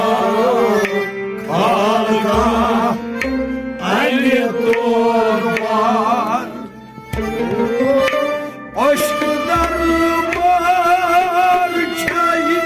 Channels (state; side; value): identical; both; correlation 1.00